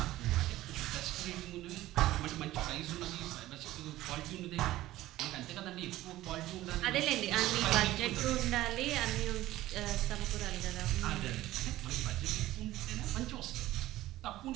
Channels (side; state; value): left; quieter; 15.8 dB